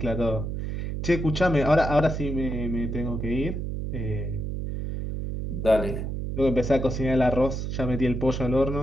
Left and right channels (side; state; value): right; noise; hum, 3 dB below the sound